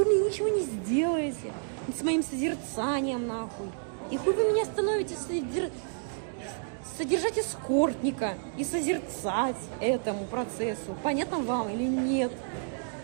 мне ничего не сделаете с моим созерцанием, нахуй. И хуй вы меня становитесь содержать эскортника и созерцать этому процессу. Понятно вам или нет?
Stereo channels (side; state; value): left; silent; digital silence